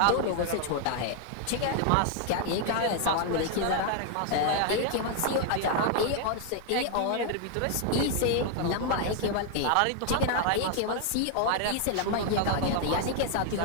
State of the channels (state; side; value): different; both; correlation 0.00